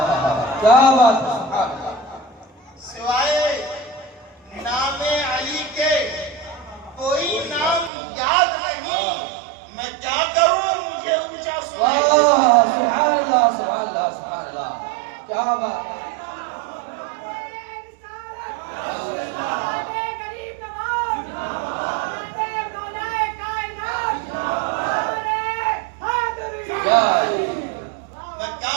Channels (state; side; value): drops out; left; at 7.9 s